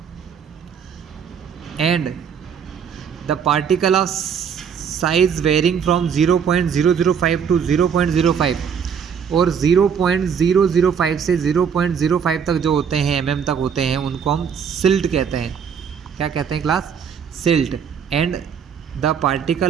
And the particle of size varying from 0.005 to 0.05 और 0.005 से 0.05 तक जो होते हैं mm तक होते हैं उनको हम सिल्ट कहते हैं। क्या कहते हैं class? Silt. And the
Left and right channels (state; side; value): quieter; left; 7.2 dB